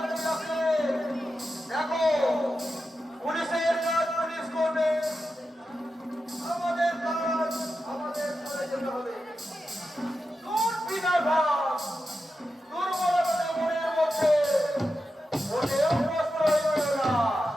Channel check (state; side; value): normal; both; correlation 0.90